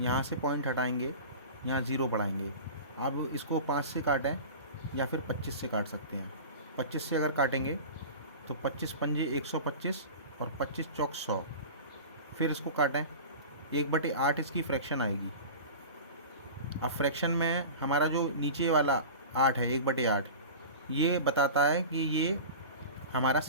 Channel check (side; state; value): both; inverted; correlation -0.34